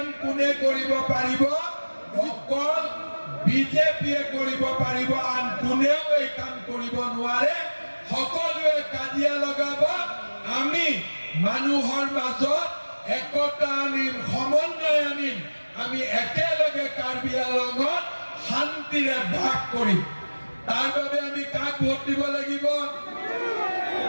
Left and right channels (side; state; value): both; inverted; correlation -1.00